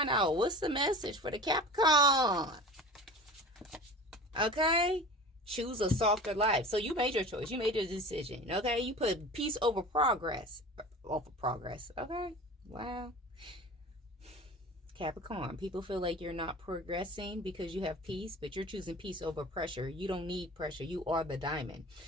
out what's the message for the Capricorn. Okay, choose a softer life. So you made your choice. You made your decision. Okay, you put peace over progress. Over progress. Okay, wow. Capricorn, people feel like you're not progressing because you have peace, but you're choosing peace over pressure. You don't need pressure. You are the diamond.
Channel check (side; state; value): both; normal; correlation 0.37